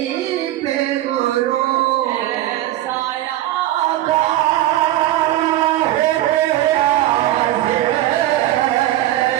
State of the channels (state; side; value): quieter; left; 14.5 dB